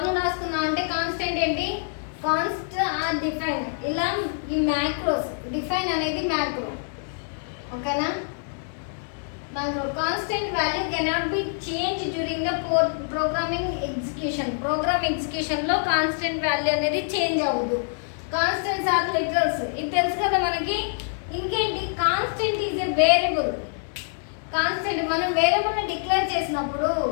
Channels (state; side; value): silent; right; digital silence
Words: అంటే కాన్స్టెంట్ ఏంటి? Const or define. ఇలా ఈ మ్యాక్రోస్ డిఫైన్ అనేది మ్యాక్రో, ఓకేనా? Macro constant value cannot be change during the programming ఎగ్జిక్యూషన్లో కాన్స్టెంట్ వాల్యూ అనేది చేంజ్ అవ్వదు. కాన్స్టెంట్స్ ఆర్ లిటరల్స్, ఇది తెలుసు కదా మనకి. ఇంకేంటి? Constant is a variable. Constant మనం వేరియబుల్ని డిక్లేర్ చేసినప్పుడు